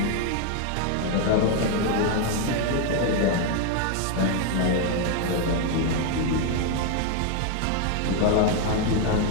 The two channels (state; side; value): different; both; correlation 0.01